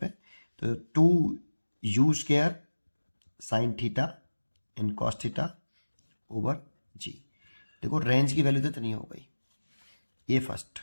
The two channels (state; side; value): inverted; both; correlation -1.00